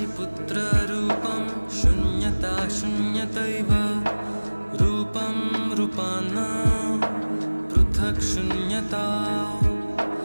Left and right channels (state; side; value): inverted; both; correlation -1.00